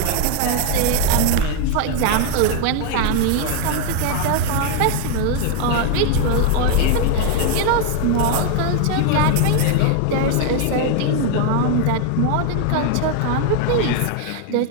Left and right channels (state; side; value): different; both; correlation 0.00